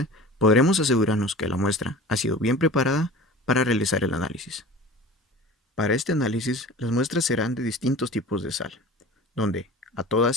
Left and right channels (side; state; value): both; normal; correlation 0.39